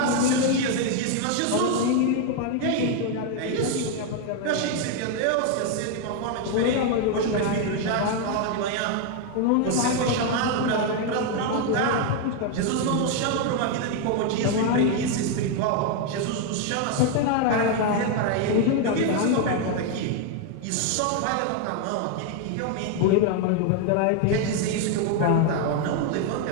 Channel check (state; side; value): different; both; correlation 0.01